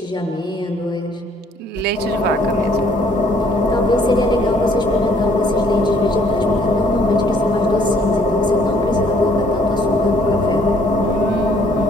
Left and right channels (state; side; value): normal; both; correlation 0.62